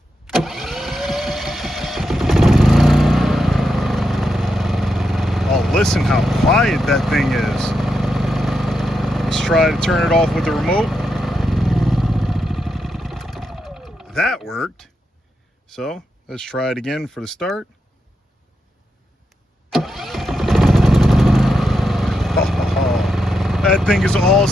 Oh, listen how quiet that thing is. Let's try to turn it off with the remote. That worked. So let's try it again for the start. Oh, that thing is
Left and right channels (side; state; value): both; normal; correlation 0.84